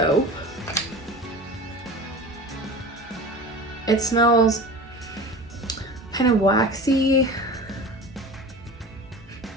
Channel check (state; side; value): normal; both; correlation 0.34